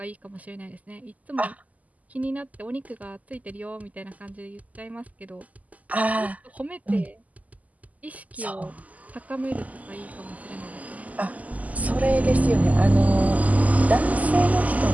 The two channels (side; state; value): left; late; 0.075 ms